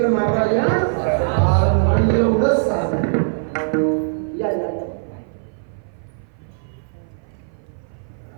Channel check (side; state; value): left; silent; 57 dB below the other